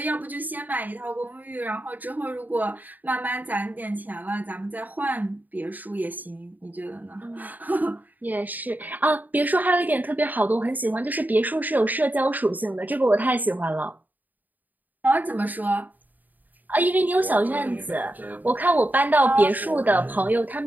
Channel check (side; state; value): left; late; 0.084 ms